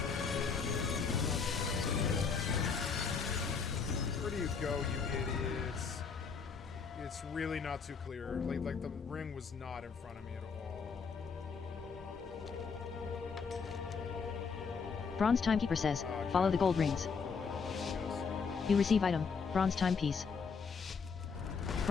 Where do you go, you idiots? It's really not too clear. Like the ring was not in front of me at all. Bronze Timekeeper says, follow the gold rings. You receive item, Bronze Timepiece.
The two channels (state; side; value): quieter; right; 5.5 dB